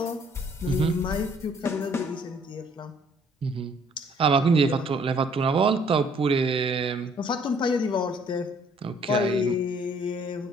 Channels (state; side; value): normal; both; correlation 0.61